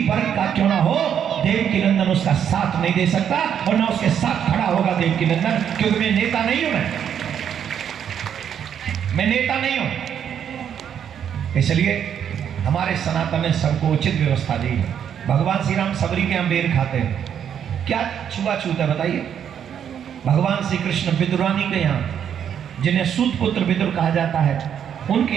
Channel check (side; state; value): left; quieter; 8.7 dB